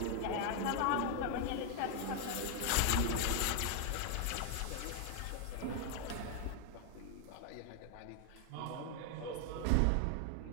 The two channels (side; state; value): both; different; correlation 0.00